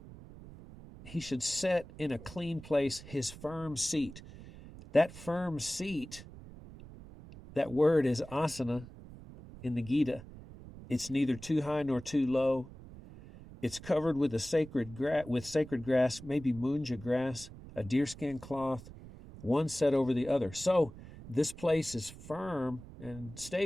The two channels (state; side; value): noise; right; rumble, 16 dB below the sound